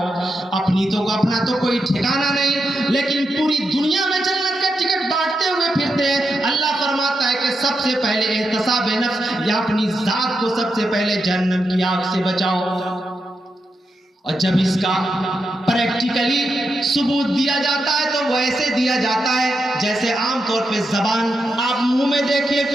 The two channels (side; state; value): both; normal; correlation 0.86